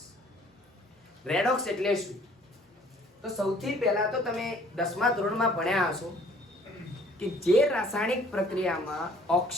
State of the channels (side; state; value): both; normal; correlation 0.57